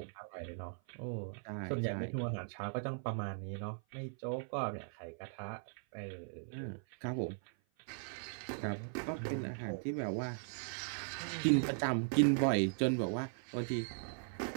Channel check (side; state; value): left; silent; 52 dB below the other